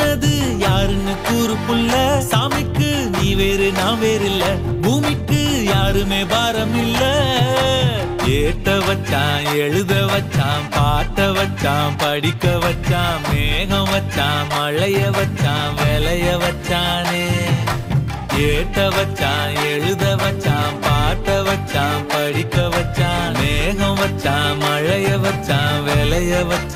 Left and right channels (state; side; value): identical; both; correlation 1.00